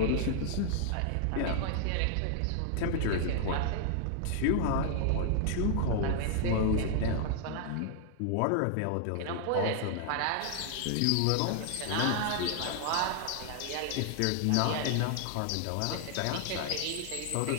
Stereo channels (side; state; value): both; different; correlation 0.00